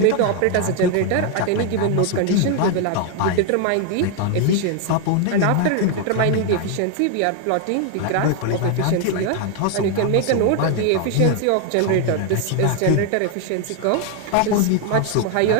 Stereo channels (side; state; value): both; different; correlation 0.01